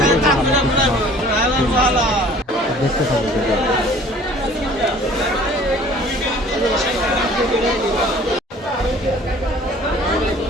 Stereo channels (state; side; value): normal; both; correlation 0.51